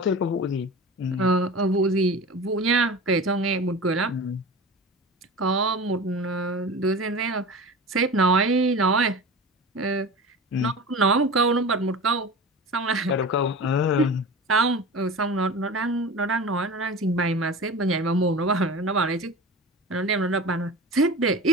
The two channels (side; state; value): both; normal; correlation 0.33